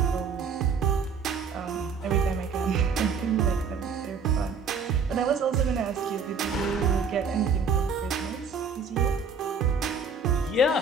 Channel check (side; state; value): left; quieter; 5.1 dB